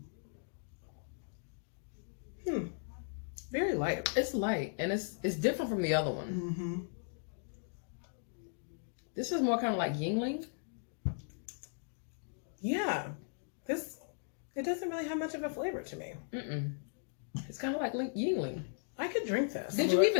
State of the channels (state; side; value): silent; right; digital silence